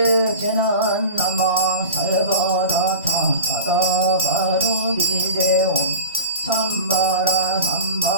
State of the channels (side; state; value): both; inverted; correlation -0.33